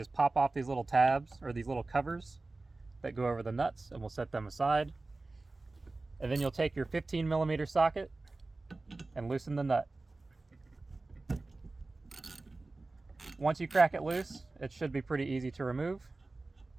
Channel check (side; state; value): left; quieter; 3.3 dB